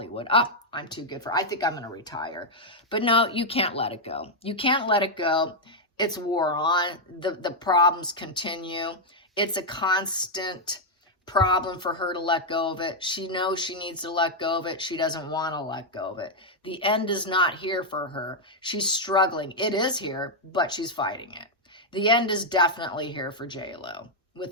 I'm too good for it. I think I'm going to retire. But no, you can't let it go. You can't let it go. It's war on. The problems continue. It's a constant problem for her to let go of it. She knows she needs to let go of it. She doesn't want to let go of it. The end is not here for her. She's struggling. It is here, but she's fighting it. The end is definitely here for J-Lo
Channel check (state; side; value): normal; both; correlation -0.02